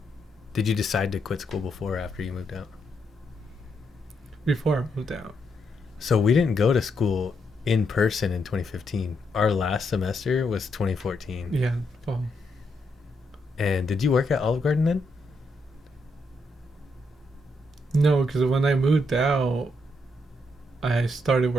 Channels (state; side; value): normal; both; correlation 0.79